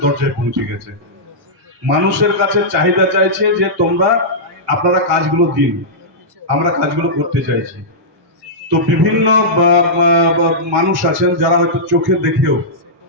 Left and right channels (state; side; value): normal; both; correlation -0.13